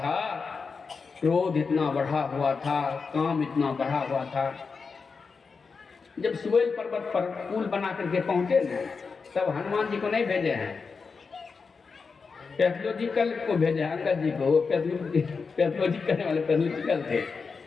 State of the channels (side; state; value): right; quieter; 5.0 dB